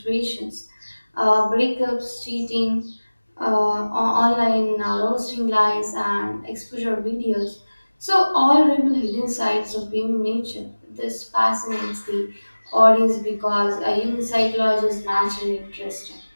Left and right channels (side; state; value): both; inverted; correlation -1.00